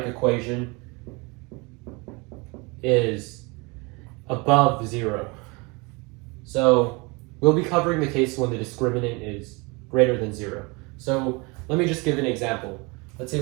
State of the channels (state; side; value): quieter; left; 27.8 dB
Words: equation is above 0. So we'll be covering the case when the discriminant is greater than 0. So let me just give an example. Let's say